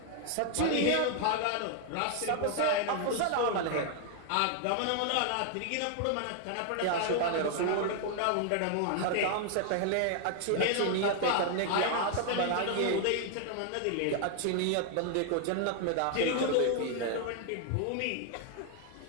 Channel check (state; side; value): different; both; correlation 0.00